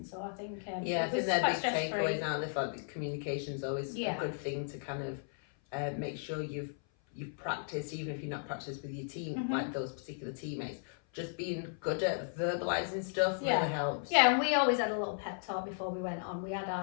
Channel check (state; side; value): silent; right; 54 dB below the other